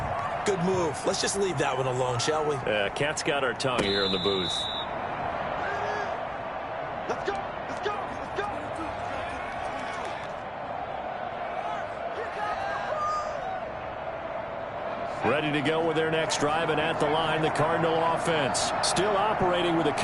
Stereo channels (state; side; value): identical; both; correlation 1.00